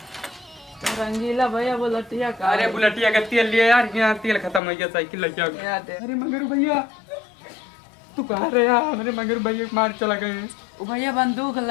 रंगीला भैया वो लटिया का। अरे बुलेटिया का तेल लिया यार, यहाँ तेल खत्म हो गया साइकिल लग गया। अरे मगर भैया तू कहाँ रहे यार? मेरे मगर भैया मार चला गए। वो भैया बंदूक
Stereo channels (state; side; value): drops out; right; at 4.6 s